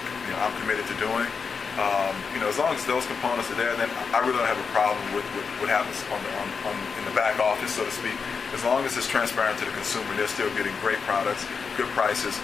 committed to doing. As long as those components are there, then I really don't have a problem with what happens in the back office, so to speak. As long as it's transparent to the consumer, they're still getting great products, good prices,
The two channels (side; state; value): right; quieter; 5.5 dB